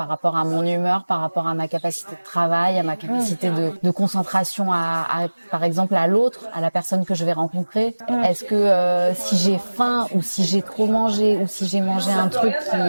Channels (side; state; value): both; inverted; correlation -1.00